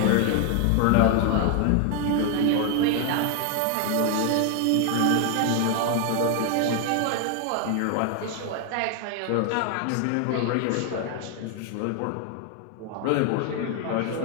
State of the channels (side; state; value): both; different; correlation 0.01